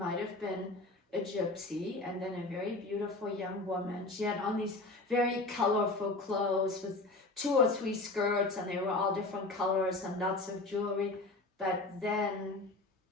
have been a gypsy, and then a very beautiful young woman. She had on these very colorful clothes with 2 or 3 skirts, and they were all different colors and lots of jewelry. But then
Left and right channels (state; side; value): quieter; right; 3.1 dB